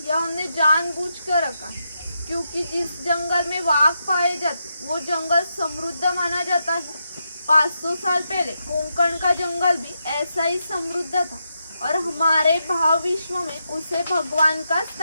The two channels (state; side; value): inverted; both; correlation -0.84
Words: यह हमने जानबूझ कर रखा है क्योंकि जिस जंगल में वाघ पाए जाते वो जंगल समृद्ध माना जाता है। 500 साल पहले कोंकण का जंगल भी ऐसा ही समृद्ध था और हमारे भाव विश्व में उसे भगवान का